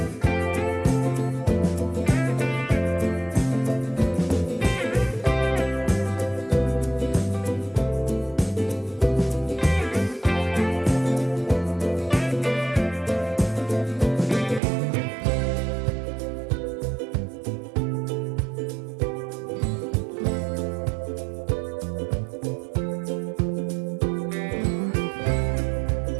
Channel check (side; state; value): left; drops out; at 14.6 s